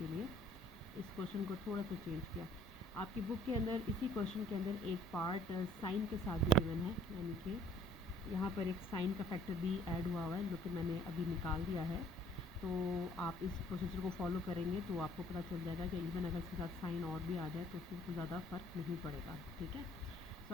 लिए इस क्वेश्चन को थोड़ा सा चेंज किया। आपकी बुक के अंदर इसी क्वेश्चन के अंदर एक पार्ट साइन के साथ भी गिवन है, यानी कि यहाँ पर एक साइन का फैक्टर भी ऐड हुआ है, जो कि मैंने अभी निकाल दिया है। तो आप इस प्रोसीजर को फॉलो करेंगे तो आपको पता चल जाएगा कि इवन अगर इसके साथ साइन और भी आ जाए तो उससे कोई ज़्यादा फ़र्क नहीं पड़ेगा, ठीक है।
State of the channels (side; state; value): both; normal; correlation 0.59